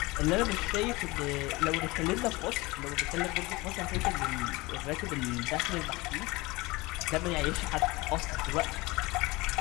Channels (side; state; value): right; quieter; 22.8 dB